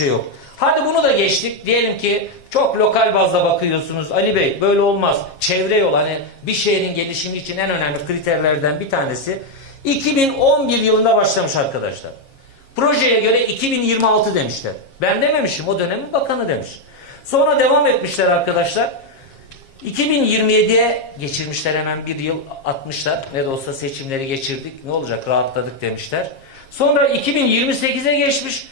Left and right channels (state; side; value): late; right; 7.4 ms